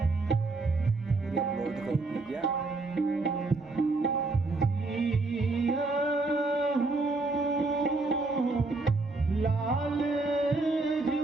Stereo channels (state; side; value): quieter; left; 3.4 dB